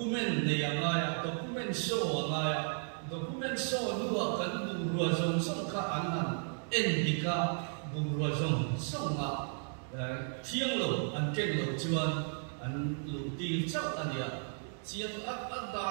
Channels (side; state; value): left; silent; 55 dB below the other